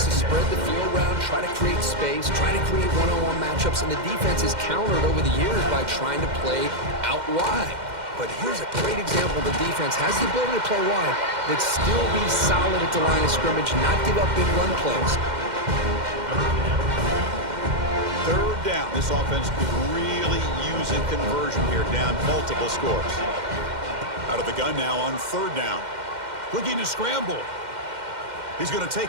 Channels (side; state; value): left; late; 2.1 ms